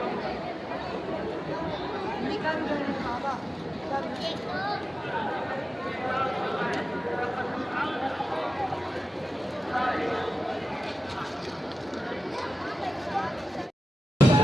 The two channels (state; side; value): normal; both; correlation 0.94